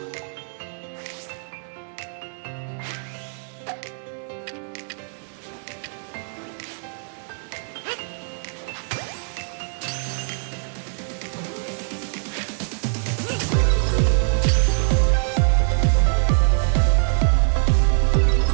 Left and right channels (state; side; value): silent; left; 59 dB below the other